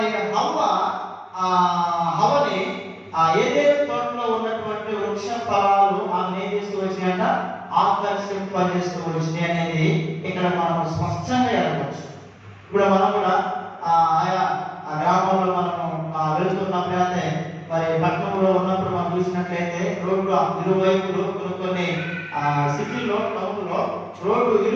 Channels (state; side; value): identical; both; correlation 1.00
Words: హవ్వని ఏదైతే తోటలో ఉన్నటువంటి వృక్ష ఫలాలు ఆమె ఏం చేస్తూ వచ్చినాయంట, ఆకర్షింపజేస్తూ వచ్చినాయి అనేది ఇక్కడ మనం స్పష్టంగా ఎరగవచ్చు. ఇప్పుడు మనం కూడా ఆయా గ్రామంలో మనము వెళ్తున్నప్పుడు అయితే మరి పట్టణంలో ఉన్నప్పుడు మనం చూసినట్లయితే రోడ్డు ఇరువైపులు కొన్ని సిటీలో టౌన్లో రోడ్డు